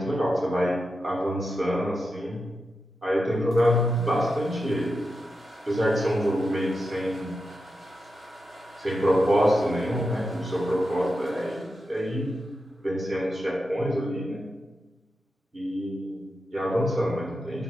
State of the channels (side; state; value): both; normal; correlation 0.88